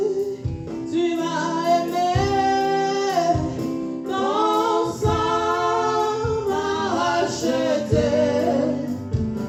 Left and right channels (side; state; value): both; identical; correlation 1.00